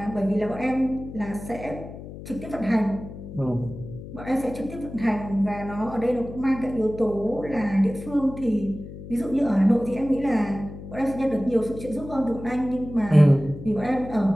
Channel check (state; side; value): noise; left; hum, 12 dB below the sound